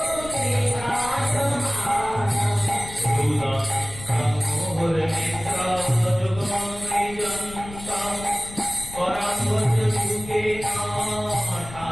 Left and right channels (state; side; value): noise; left; rumble, 15 dB below the sound